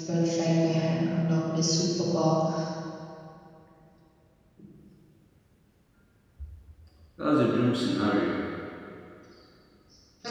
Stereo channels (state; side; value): identical; both; correlation 1.00